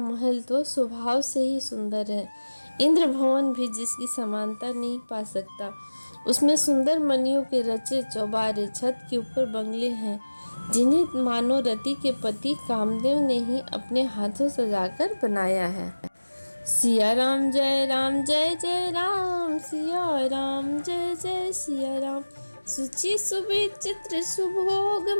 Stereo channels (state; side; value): inverted; both; correlation -1.00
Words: तो स्वभाव से ही सुंदर है, इंद्र भवन भी जिसकी समानता नहीं पा सकता। उसमें सुंदर मणियों के रचे चौबारे, छत के ऊपर बंगले हैं जिन्हें मानो रति के पति कामदेव ने ही अपने हाथों सजाकर बनाया है। सिया राम जय राम, सिया राम जय जय सिया राम। सुचि सुविचित्र